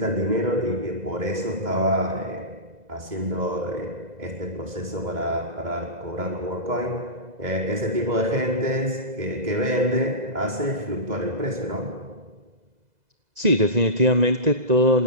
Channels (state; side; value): late; left; 2.0 ms